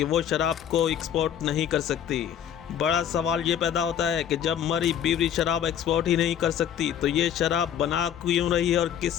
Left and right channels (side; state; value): right; quieter; 9.5 dB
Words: वो शराब को एक्सपोर्ट नहीं कर सकती। बड़ा सवाल ये पैदा होता है कि जब मरी ब्रूअरी शराब एक्सपोर्ट ही नहीं कर सकती तो ये शराब बना क्यों रही है और